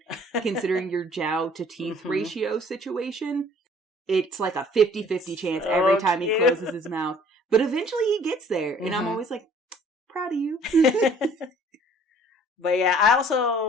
considering your jowl to teeth ratio situation. It's like a 50-50 chance every time he closes his mouth. But eventually he gets there. And I'm always like, proud of you. But yeah, I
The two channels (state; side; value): normal; both; correlation 0.55